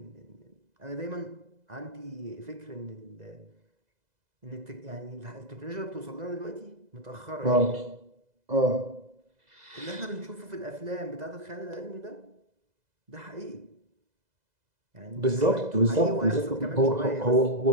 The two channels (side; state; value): left; late; 2.0 ms